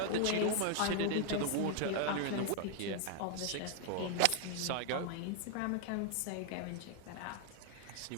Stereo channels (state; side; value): different; both; correlation 0.00